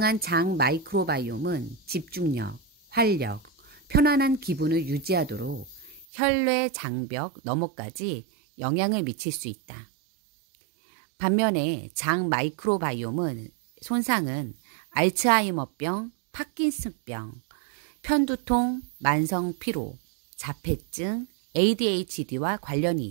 장 마이크로바이옴은 집중력, 활력, 편안한 기분을 유지하도록 혈뇌 장벽 너머까지 영향을 미칠 수 있다. 반면에 장 마이크로바이옴은 손상은 알츠하이머병, 파킨슨병, 편두통, 만성 피로, 자폐증, ADHD와 관련이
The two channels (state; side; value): drops out; left; at 6.1 s